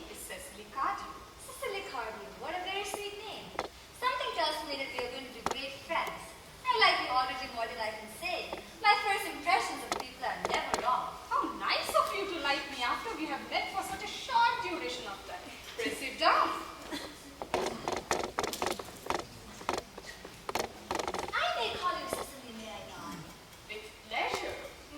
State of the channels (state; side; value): identical; both; correlation 1.00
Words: is Cecily Cardew. Cecily Cardew, what a very sweet name. Something tells me that we are going to be great friends. I like you already more than I can say. My first impressions of people are never wrong. How nice of you to like me after we have met for such a short duration of time. Pray sit down. I may call you Cecily, may I not? With pleasure,